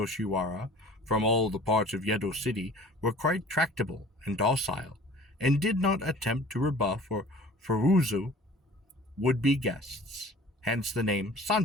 from all the parts of Yedo City were quite tractable and docile, and did not attempt to rebuff or furuzu would-be guests, hence the name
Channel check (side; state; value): both; normal; correlation 0.47